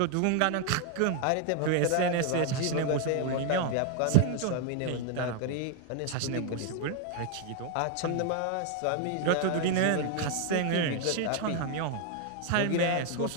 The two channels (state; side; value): different; both; correlation 0.00